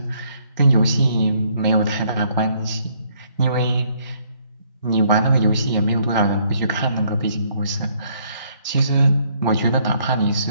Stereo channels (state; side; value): inverted; both; correlation -0.67